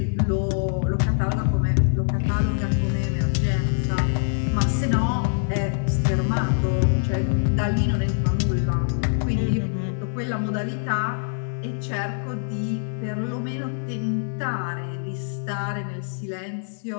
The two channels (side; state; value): right; silent; digital silence